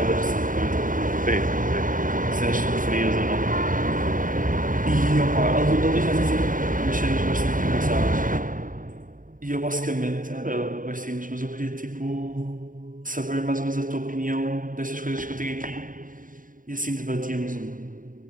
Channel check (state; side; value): late; left; 0.39 ms